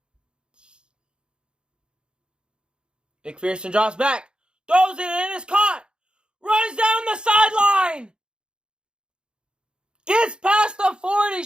McPherson drops back. Throws it and it's caught. runs down the sideline. Gets past the 40.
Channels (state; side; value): late; left; 0.051 ms